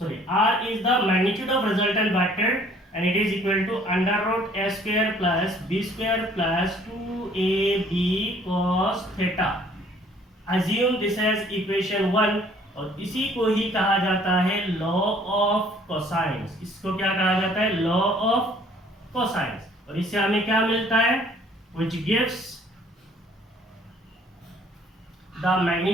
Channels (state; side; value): normal; both; correlation 0.58